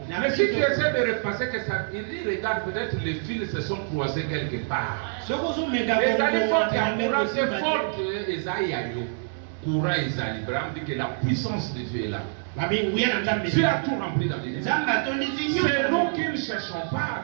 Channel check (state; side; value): silent; left; digital silence